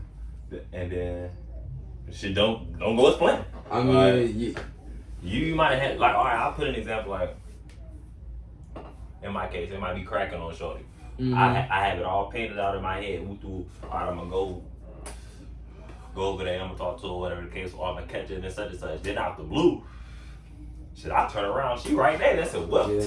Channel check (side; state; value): both; identical; correlation 1.00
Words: and then shit don't go as planned. I mean, you might have had, like, all right, I'll put an example, like, in my case, it might be cracking on shorty. I have it all painted out in my head. All right, I'm gonna go over there, I'm gonna talk to her, whatever the case, or I'm gonna catch it and such and such. Then out the blue, shit, I turn around, she right there. That's it. Well,